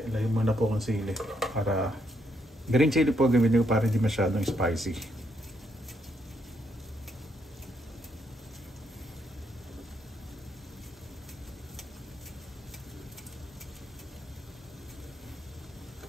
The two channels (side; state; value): both; normal; correlation 0.76